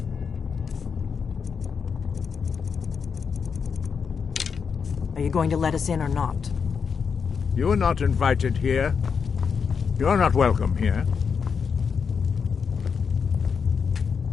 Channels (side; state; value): right; quieter; 6.1 dB